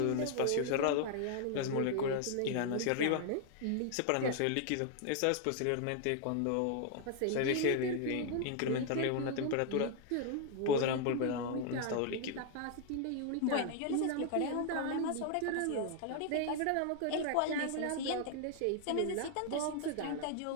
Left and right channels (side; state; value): both; different; correlation 0.00